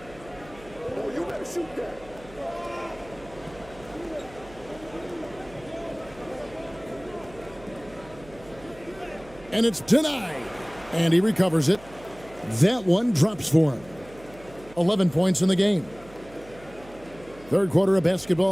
And it's denied. And he recovers it. That one drops for him. 11 points in the game. Third quarter of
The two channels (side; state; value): right; noise; hum, 21 dB below the sound